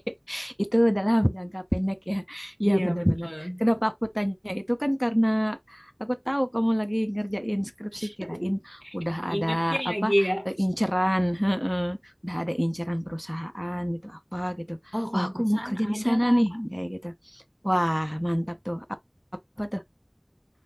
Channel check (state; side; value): identical; both; correlation 1.00